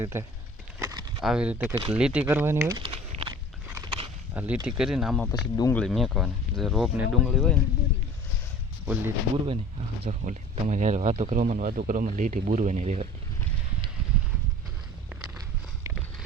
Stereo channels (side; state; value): both; normal; correlation 0.44